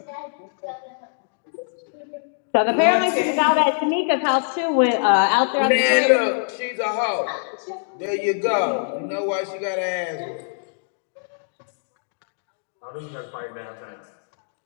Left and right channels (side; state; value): right; silent; digital silence